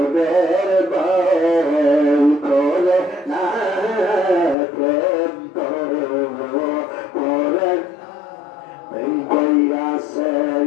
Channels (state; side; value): drops out; right; at 4.5 s